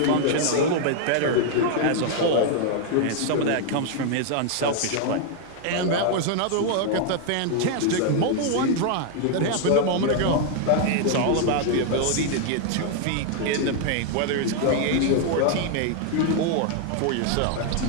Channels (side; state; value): both; different; correlation 0.00